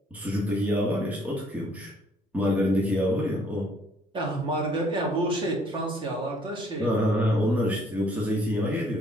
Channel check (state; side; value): normal; both; correlation 0.63